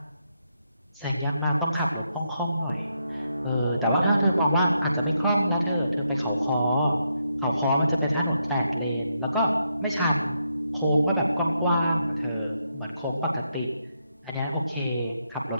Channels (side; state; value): both; inverted; correlation -0.80